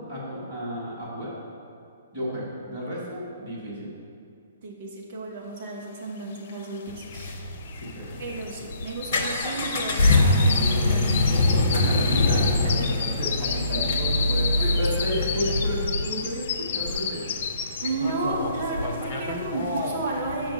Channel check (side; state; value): both; inverted; correlation -0.64